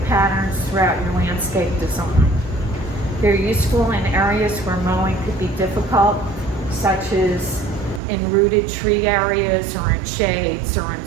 patterns throughout your landscape design. They're useful in areas where mowing could be difficult, such as in rooted tree areas or in shades or in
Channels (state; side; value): drops out; left; at 8.0 s